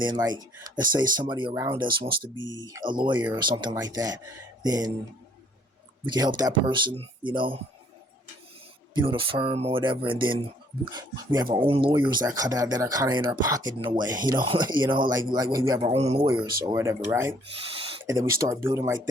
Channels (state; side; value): normal; both; correlation 0.62